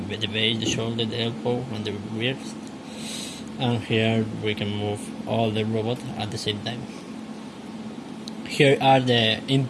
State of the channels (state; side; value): identical; both; correlation 1.00